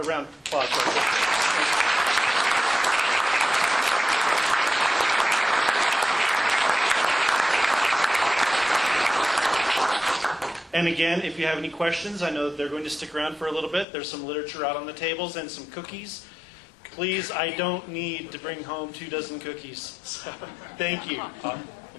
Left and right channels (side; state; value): right; drops out; at 13.9 s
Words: round of applause. And again, if you have any questions, I know they're going to stick around for a little bit. There's some literature out on the tables and some cookies. Please, I don't need to bring home 24 cookies. So, thank you.